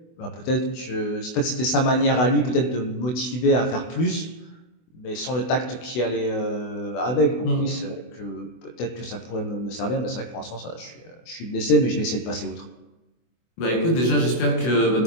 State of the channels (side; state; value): right; late; 24 ms